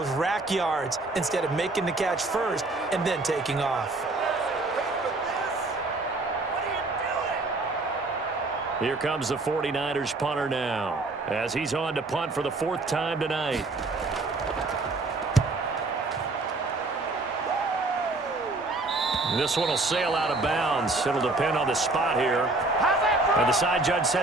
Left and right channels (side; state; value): left; quieter; 3.1 dB